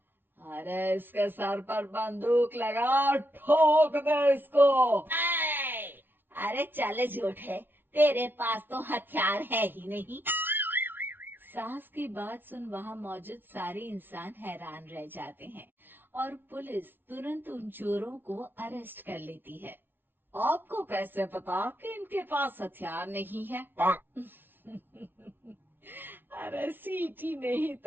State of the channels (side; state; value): left; late; 0.099 ms